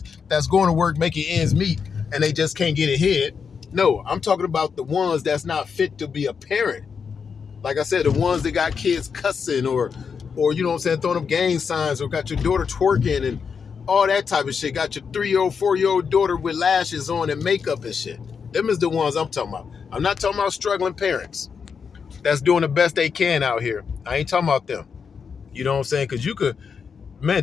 that's going to work making ends meet and they just can't get ahead. No, I'm talking about the ones that's not fit to be a parent. Like I said, the ones that got kids cussing or throwing up gang signs or got your daughter twerking and all that type of shit. Got your 3-year-old, 4-year-old daughter with lashes on and makeup and shit. Them is the ones I'm talking about. I'm not talking about struggling parents that's doing the best they can out here. I ain't talking about them. You know what I'm saying? Because you could,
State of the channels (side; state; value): right; quieter; 6.1 dB